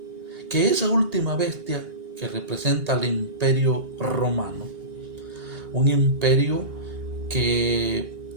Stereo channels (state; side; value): late; left; 2.8 ms